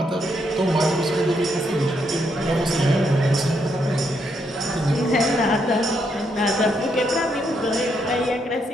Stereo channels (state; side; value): normal; both; correlation 0.77